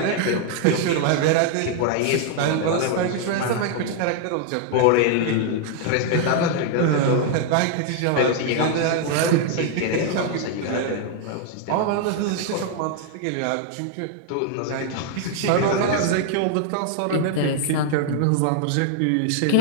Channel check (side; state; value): both; different; correlation 0.00